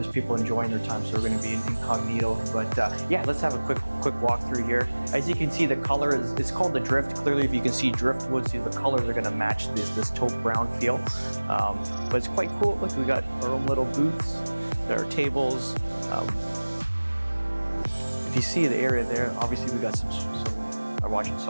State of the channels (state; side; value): inverted; both; correlation -1.00